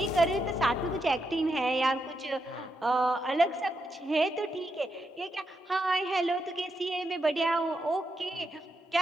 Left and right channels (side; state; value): both; normal; correlation 0.83